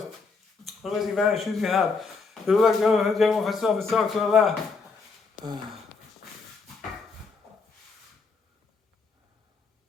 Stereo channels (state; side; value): quieter; right; 4.5 dB